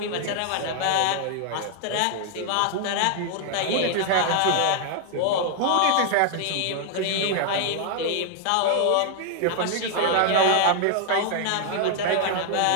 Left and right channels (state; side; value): different; both; correlation 0.00